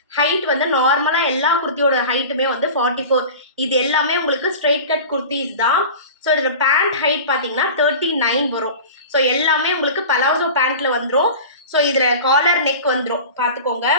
ஹைட் வந்து நார்மலாக எல்லா குர்த்தியோட ஹைட்டுமே வந்து 44. இது எல்லாமே உங்களுக்கு ஸ்ட்ரெயிட் கட் குர்த்திஸ் தான். ஸோ இதோட பேண்ட் ஹைட் பார்த்தீங்கன்னா 39 வரும். ஸோ எல்லாமே உங்களுக்கு பலாசோ பேண்ட்டில் வந்துடும். ஸோ இதில் காலர் நெக் வந்துடும் பார்த்துக்கோங்க.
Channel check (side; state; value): both; inverted; correlation -0.34